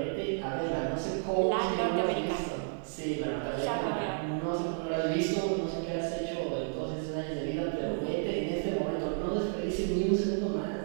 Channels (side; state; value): left; silent; 57 dB below the other